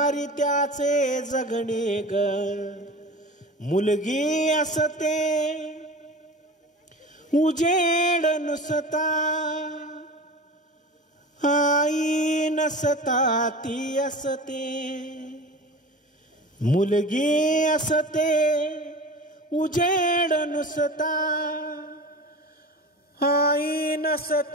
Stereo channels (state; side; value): normal; both; correlation 0.34